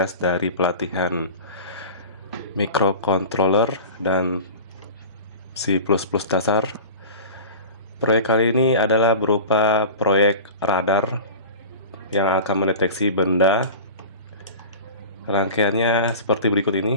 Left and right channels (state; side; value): inverted; both; correlation -0.34